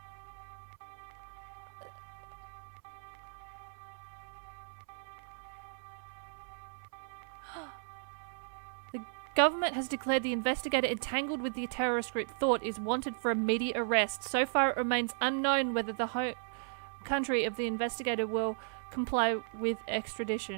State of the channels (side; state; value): left; silent; 54 dB below the other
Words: The government has declared the investigator entangled with the terrorist group Thought is wanted for immediate arrest. So far it remains unknown whether the home country of the investigator will comply with